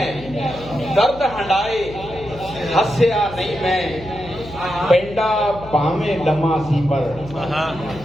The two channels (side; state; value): left; noise; hum, 16 dB below the sound